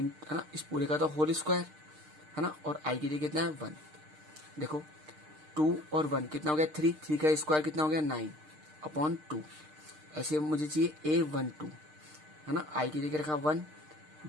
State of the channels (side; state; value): left; late; 6.5 ms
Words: ना, इस पूरे का तो होल स्क्वायर है ना, और i की जगह कितना है 1। देखो 2 और 1 कितना हो गया 3, 3 का स्क्वायर कितना हो गया 9 अपॉन 2। ऐसे मुझे चाहिए a12 है ना, i की जगह रखा 1,